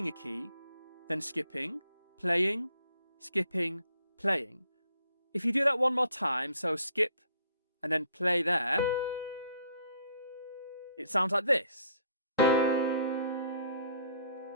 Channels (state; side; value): inverted; both; correlation -0.63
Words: a key, then skipping, playing, skipping, playing. If you do that one more time, so skip and then play there, it sounds like this.